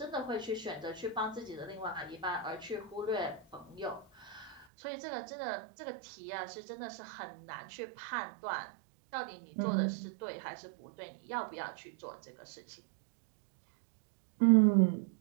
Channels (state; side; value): drops out; left; at 4.7 s